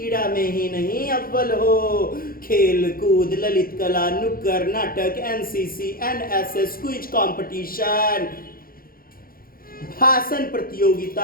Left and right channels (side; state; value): right; late; 0.42 ms